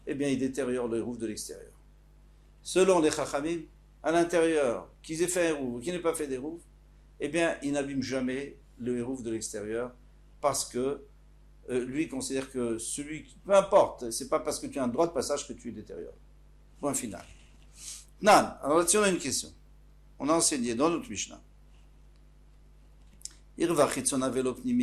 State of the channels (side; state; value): both; identical; correlation 1.00